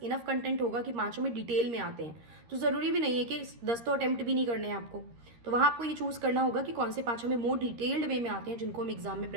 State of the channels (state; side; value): late; left; 13 ms